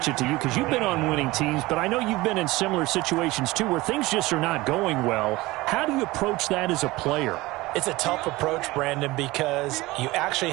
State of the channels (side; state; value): left; quieter; 20.2 dB